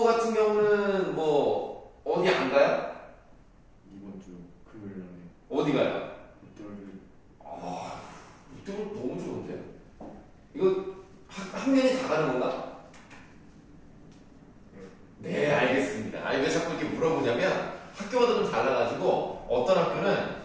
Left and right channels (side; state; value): both; identical; correlation 1.00